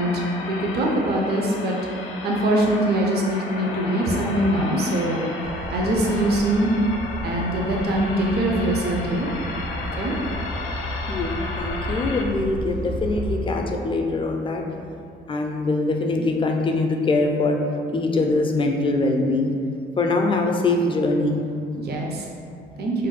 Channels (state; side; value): normal; both; correlation 0.56